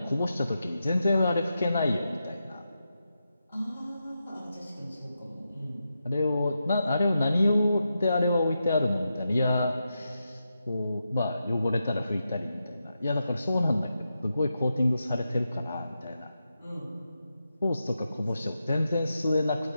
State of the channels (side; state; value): both; inverted; correlation -0.87